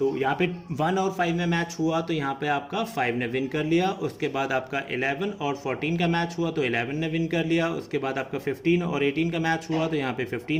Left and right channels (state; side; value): identical; both; correlation 1.00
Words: यहाँ पे 1 और 5 में मैच हुआ तो यहाँ पे आपका 5 ने विन कर लिया। उसके बाद आपका 11 और 14 का मैच हुआ तो 11 ने विन कर लिया। उसके बाद आपका 15 और 18 का मैच हुआ तो यहाँ पे 15